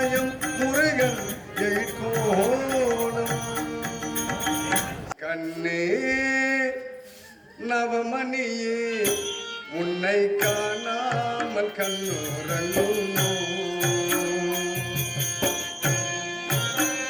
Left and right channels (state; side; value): identical; both; correlation 1.00